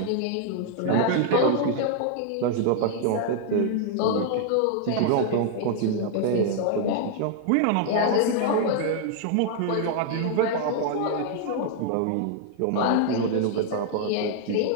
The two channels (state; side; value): different; both; correlation 0.00